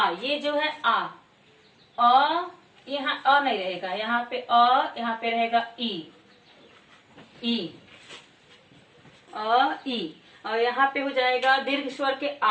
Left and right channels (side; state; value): both; identical; correlation 1.00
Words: ये जो है आ यहाँ अ नहीं रहेगा, यहाँ पे यहाँ पे रहेगा ई और यहाँ पे हो जाएगा दीर्घ स्वर के